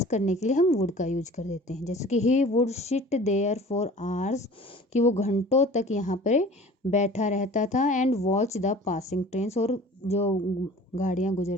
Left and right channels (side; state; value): both; normal; correlation 0.44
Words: करने के लिए हम वुड का यूज कर देते हैं। जैसे कि he would sit there for hours, कि वो घंटों तक यहाँ पर बैठा रहता था। And watch the passing trains, और जो गाड़ियाँ